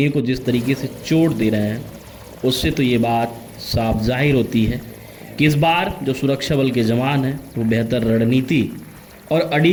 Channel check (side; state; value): both; identical; correlation 1.00